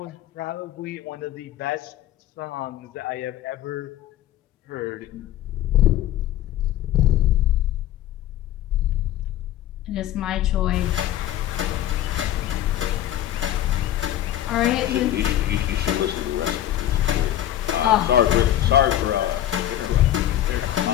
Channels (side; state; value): right; quieter; 12.6 dB